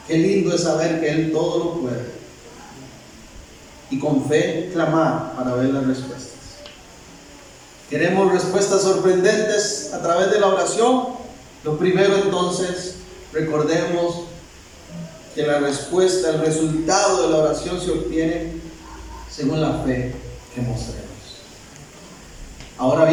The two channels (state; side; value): identical; both; correlation 1.00